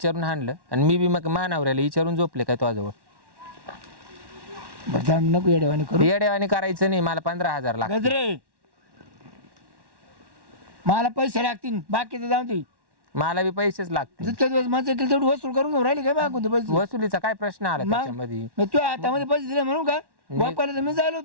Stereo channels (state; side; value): late; left; 1.1 ms